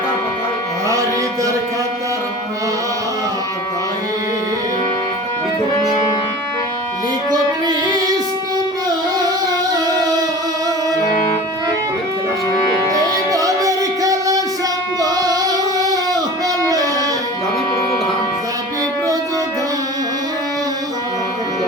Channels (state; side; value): normal; both; correlation 0.38